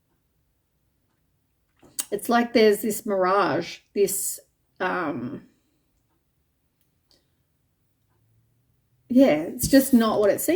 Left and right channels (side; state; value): both; identical; correlation 1.00